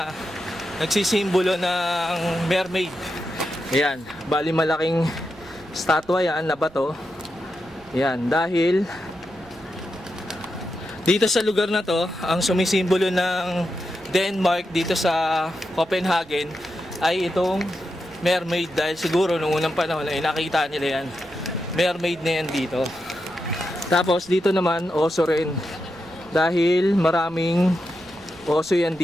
nagsisimbolo ng mermaid. Ayan, bali malaking statwa yan na bato. Yan, dahil dito sa lugar na to, ang sumisimbolo ng Denmark dito sa Copenhagen ay itong mermaid, dahil siguro nung unang panahon ay nakita nila yan, mermaid na yan dito. Tapos dito naman oso rin, dahil maraming oso yan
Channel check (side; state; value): right; noise; rumble, 25 dB below the sound